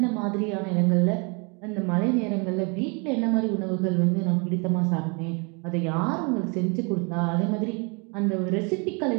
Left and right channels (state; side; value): quieter; left; 32.5 dB